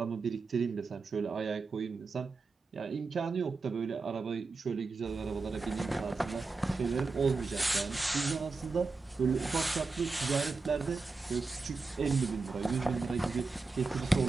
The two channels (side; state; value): left; quieter; 4.0 dB